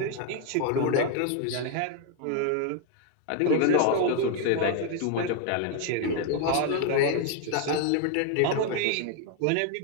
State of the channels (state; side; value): different; both; correlation 0.00